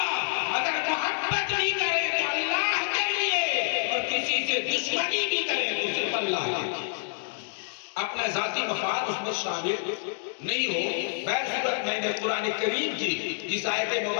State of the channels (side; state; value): right; silent; digital silence